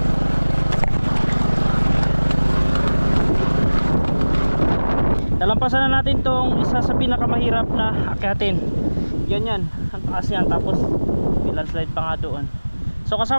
Nalampasan na natin tong isa sa pinakamahirap na akyatin. Yan, ang taas yan. Tapos may landslide pa nga doon. So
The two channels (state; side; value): inverted; both; correlation -1.00